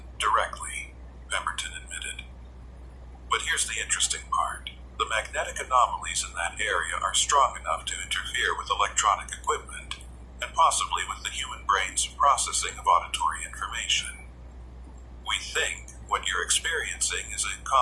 directly," Pemberton admitted. "But here's the interesting part. The magnetic anomalies in that area are strong enough to interfere with electronic equipment, and possibly with the human brain's processing of auditory information. We think what you're experiencing is a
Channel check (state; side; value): identical; both; correlation 1.00